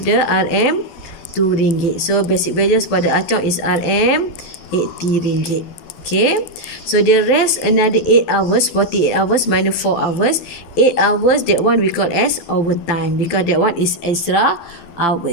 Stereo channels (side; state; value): right; late; 12 ms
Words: the RM 2 ringgit. So basic wages for the Ah Chong is RM 80 ringgit. Okay, so the rest another 8 hours, 48 hours minus 4 hours, 8 hours, that one we call as overtime, because that one is extra